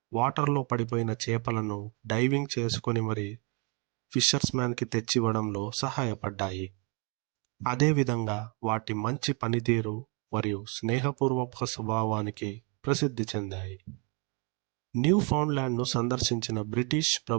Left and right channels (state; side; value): quieter; left; 34.3 dB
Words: వాటర్లో పడిపోయిన చేపలను డైవింగ్ చేసుకొని మరి ఫిషర్స్ మ్యాన్కి తెచ్చివ్వడంలో సహాయపడ్డాయి. అదేవిధంగా వాటి మంచి పనితీరు మరియు స్నేహపూర్వక స్వభావానికి ప్రసిద్ధి చెందాయి. న్యూ ఫౌండ్లాండ్ను సందర్శించిన బ్రిటిష్